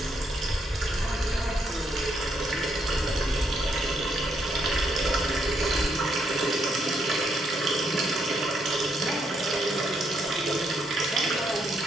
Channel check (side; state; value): both; normal; correlation 0.76